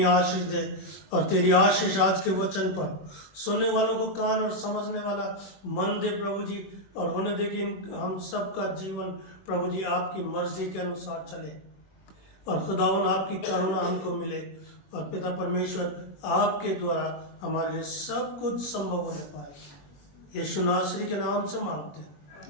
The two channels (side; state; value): right; late; 21 ms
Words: आशीष दे, और तेरी आशीष आज के वचन पर सुनने वालों को कान और समझने वाला मन दे प्रभु जी, और होने दे कि हम सबका जीवन प्रभु जी आपकी मर्जी के अनुसार चले, और खुदावन आपकी करुणा हमको मिले, और पिता परमेश्वर आपके द्वारा हमारे लिए सब कुछ संभव होने पाए। यीशु नासरी के नाम से मांगते हैं,